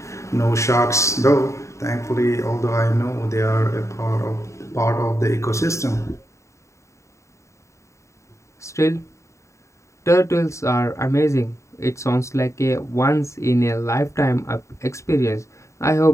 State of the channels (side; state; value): right; late; 0.14 ms